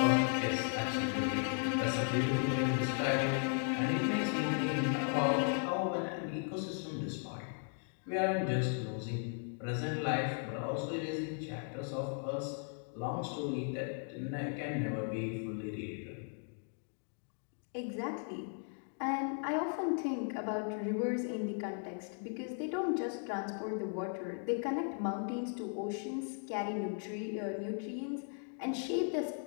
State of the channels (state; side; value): silent; right; 53 dB below the other